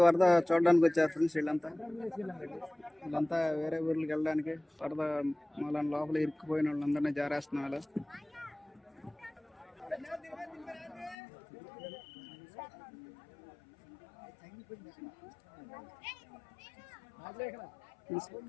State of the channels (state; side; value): drops out; right; at 11.2 s